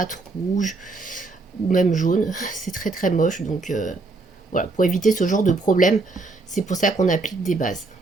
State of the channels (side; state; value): left; quieter; 3.5 dB